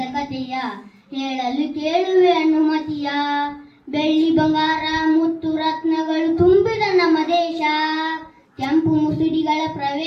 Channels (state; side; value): identical; both; correlation 1.00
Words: ಕಥೆಯ ಹೇಳಲು ಕೇಳುವೆ ಅನುಮತಿಯ. ಬೆಳ್ಳಿ ಬಂಗಾರ ಮುತ್ತು ರತ್ನಗಳು ತುಂಬಿದ ನಮ್ಮ ದೇಶ, ಕೆಂಪು ಮುಸುಡಿಗಳ